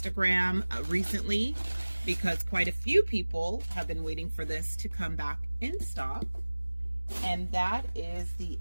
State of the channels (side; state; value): both; inverted; correlation -1.00